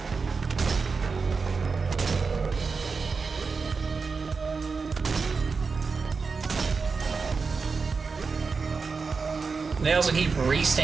They also keep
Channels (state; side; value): quieter; left; 4.8 dB